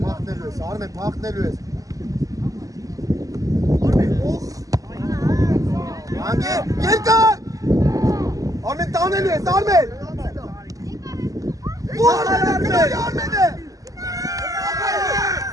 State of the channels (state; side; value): late; left; 0.17 ms